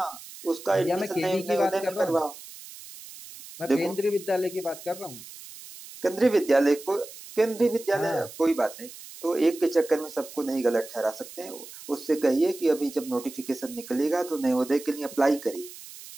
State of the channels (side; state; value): right; noise; hiss, 16 dB below the sound